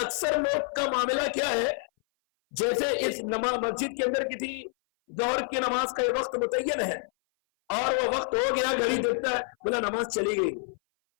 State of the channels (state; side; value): silent; right; 57 dB below the other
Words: لوگ کا معاملہ کیا ہے، جیسے اس مسجد کے اندر کسی ظہر کی نماز کا یہ وقت متعین ہے اور وہ وقت ہو گیا، گھڑی دیکھتا ہے، بولا نماز چلی گئی،